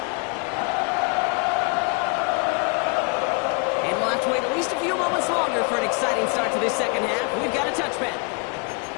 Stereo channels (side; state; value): right; quieter; 32.9 dB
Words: And we'll have to wait at least a few moments longer for an exciting start to this second half. We've got a touchback.